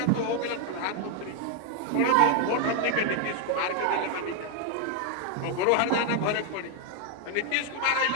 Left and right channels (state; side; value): different; both; correlation 0.01